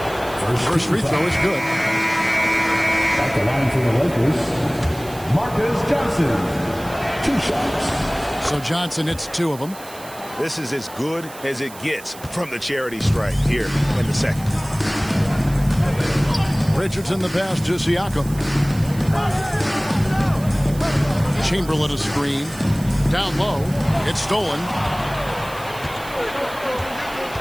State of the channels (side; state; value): right; noise; hiss, 18 dB below the sound